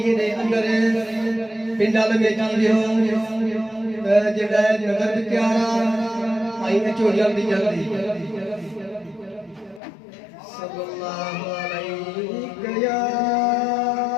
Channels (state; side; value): drops out; right; at 9.8 s